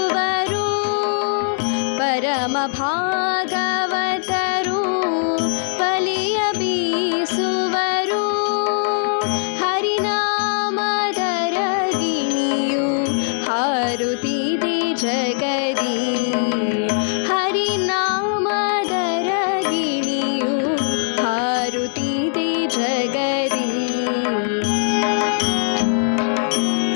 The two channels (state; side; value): silent; right; digital silence